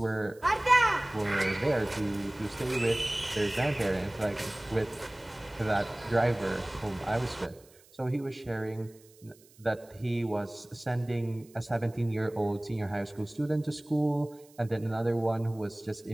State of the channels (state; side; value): noise; right; hiss, 27 dB below the sound